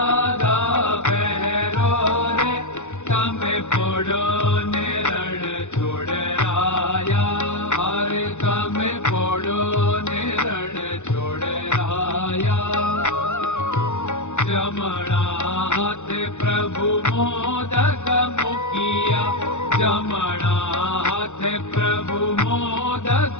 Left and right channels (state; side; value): late; right; 0.84 ms